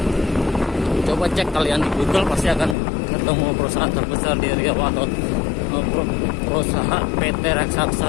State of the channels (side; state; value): right; drops out; at 2.8 s